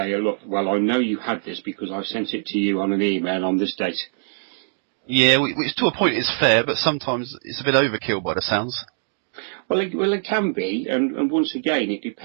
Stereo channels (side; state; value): left; silent; digital silence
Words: look, well, I know you had this because I sent it to you on an email on this date. Yeah, which to a point is fair, but sometimes it's a bit overkill by the sounds. Well, it can be, and once again, it